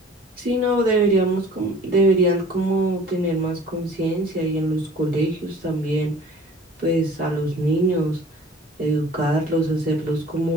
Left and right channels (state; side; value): normal; both; correlation 0.48